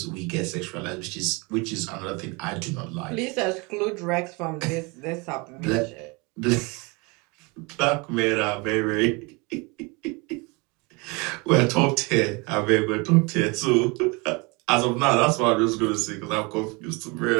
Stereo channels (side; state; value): left; quieter; 28.2 dB